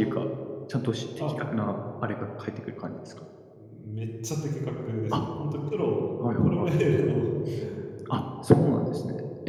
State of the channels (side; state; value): both; identical; correlation 1.00